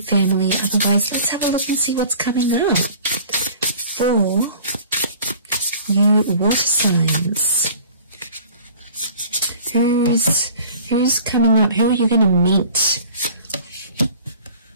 family. Otherwise, let's have a look and see what's coming up for you water signs. Who's coming up? Who are you going to meet?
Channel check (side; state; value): both; inverted; correlation -0.46